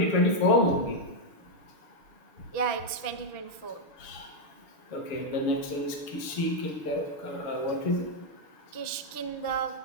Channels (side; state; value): right; late; 6.1 ms